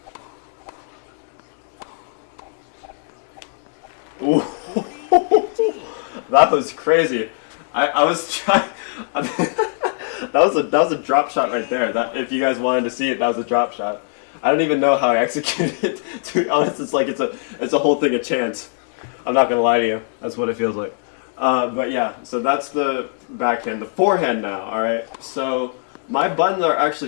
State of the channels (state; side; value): silent; right; digital silence